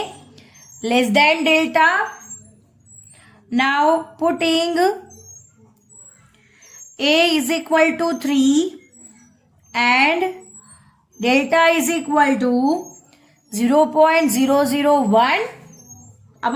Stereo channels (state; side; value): identical; both; correlation 1.00